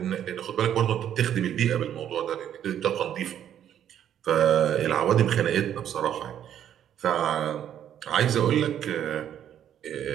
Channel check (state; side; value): quieter; left; 10.1 dB